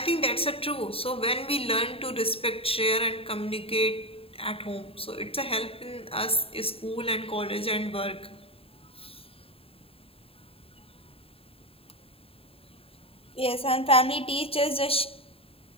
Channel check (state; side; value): late; right; 0.27 ms